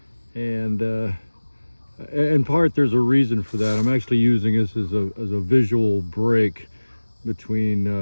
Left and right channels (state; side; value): inverted; both; correlation -1.00